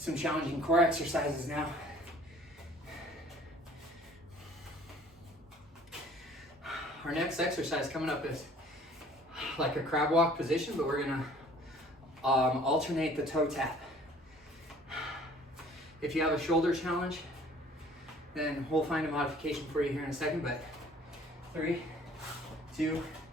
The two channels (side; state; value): both; normal; correlation 0.53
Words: challenging core exercises now. Our next exercise coming up is like a crab walk position, but we're gonna alternate the toe tap. If you have a shoulder challenge, then we'll find a modification for you here in a second, but 3, 2,